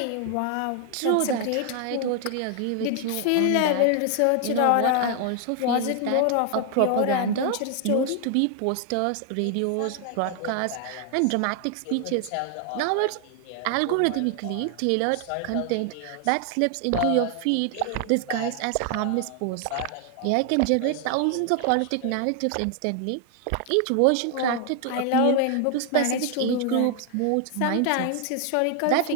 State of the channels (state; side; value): different; both; correlation 0.00